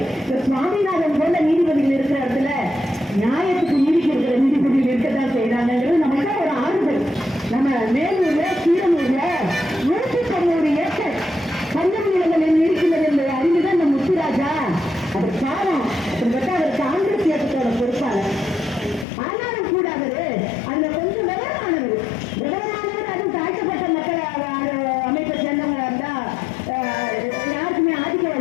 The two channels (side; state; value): right; drops out; at 19.1 s